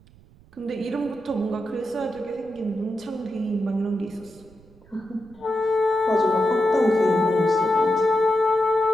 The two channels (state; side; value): noise; right; rumble, 26 dB below the sound